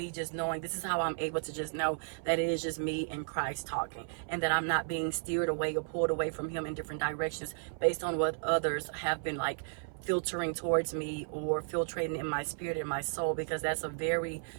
just knowing. This is how I'm able to just know that it is just me and Christ talking, and that I'm not being steered away or pulled away from him in different directions based on what others have been like filtering towards me or filtrating in my spirit and my soul, because that's a very,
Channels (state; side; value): silent; left; 55 dB below the other